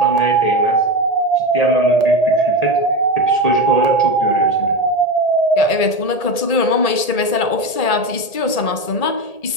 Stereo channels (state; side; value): late; right; 1.8 ms